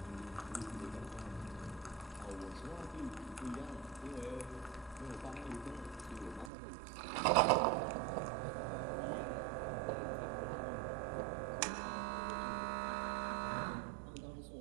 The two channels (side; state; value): left; drops out; at 6.5 s